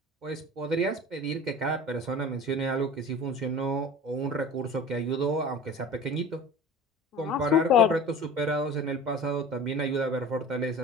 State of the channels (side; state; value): both; normal; correlation 0.38